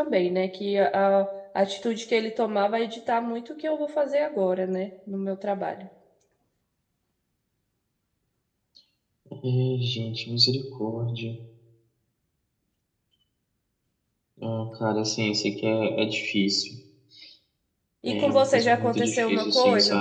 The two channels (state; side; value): identical; both; correlation 1.00